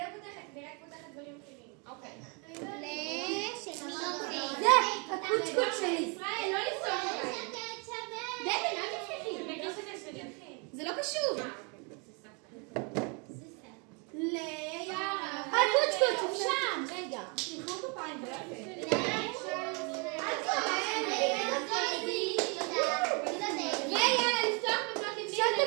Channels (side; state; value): left; quieter; 33.6 dB